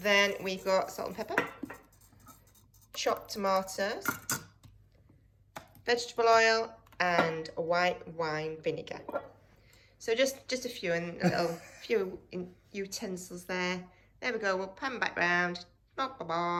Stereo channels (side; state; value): both; identical; correlation 1.00